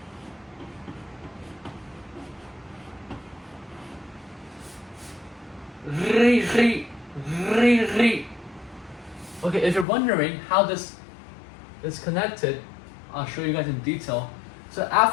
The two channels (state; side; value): drops out; right; at 9.9 s